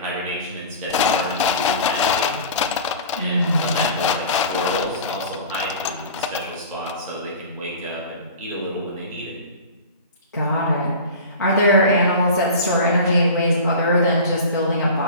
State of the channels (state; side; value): inverted; both; correlation -0.37